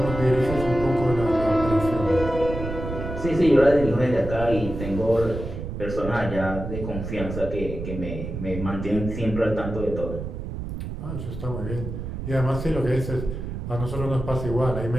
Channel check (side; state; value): right; noise; rumble, 7 dB below the sound